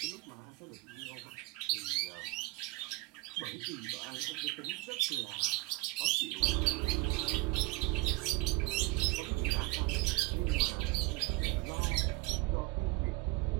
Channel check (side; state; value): left; quieter; 21.6 dB